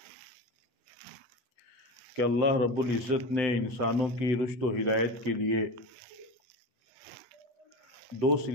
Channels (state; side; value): late; left; 7.8 ms